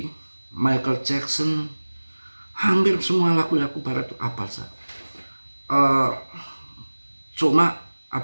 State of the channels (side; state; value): both; inverted; correlation -1.00